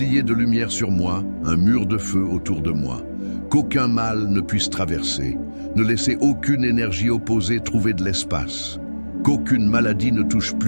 de lumière sur moi, un mur de feu autour de moi. Qu'aucun mal ne puisse traverser. Ne laissez aucune énergie opposée trouver de l'espace. Qu'aucune maladie ne touche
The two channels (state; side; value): inverted; both; correlation -1.00